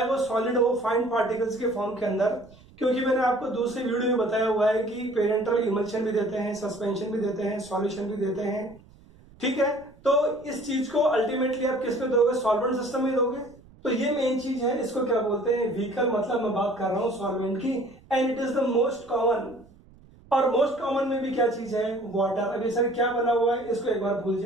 वो सॉलिड हो, फाइन पार्टिकल्स के फॉर्म के अंदर। क्योंकि मैंने आपको दूसरे वीडियो में बताया हुआ है कि पेरेंटल इमल्शन भी देते हैं, सस्पेंशन भी देते हैं, सॉल्यूशन भी देते हैं। ठीक है, तो इस चीज को अल्टीमेटली आप किस पे दोगे? सॉल्वेंट सिस्टम में दोगे। तो ये मेन चीज है, इसको क्या बोलते हैं? व्हीकल। मतलब मैं बात कर रहा हूं सॉल्वेंट की, and it is the most common. और मोस्ट कॉमन में भी क्या चीज है? वाटर। अभी सर क्या बना हुआ है इसको एक बार भूल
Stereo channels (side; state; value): right; noise; rumble, 25 dB below the sound